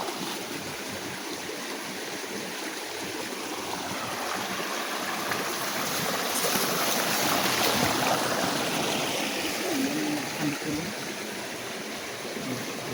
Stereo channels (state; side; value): identical; both; correlation 1.00